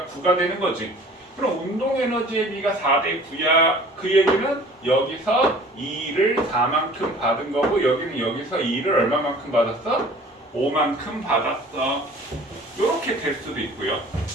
9가 되는 거지. 그럼 운동 에너지의 비가 4대 9야. 그 얘기는 여기서 2를 4만큼 받은 거고 여기는 여기서 2를 얼마만큼 받았어? 5만큼 받았어. 이렇게 될 수도 있고요.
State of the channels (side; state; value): both; normal; correlation 0.48